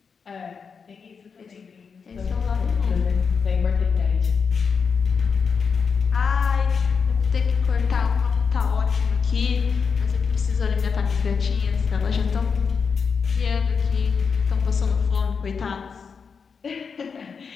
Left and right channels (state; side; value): quieter; right; 5.8 dB